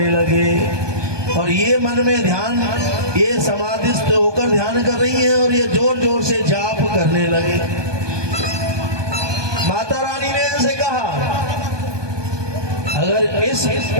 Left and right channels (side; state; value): left; late; 1.2 ms